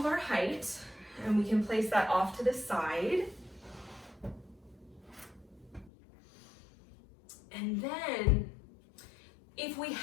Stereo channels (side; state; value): right; drops out; at 5.9 s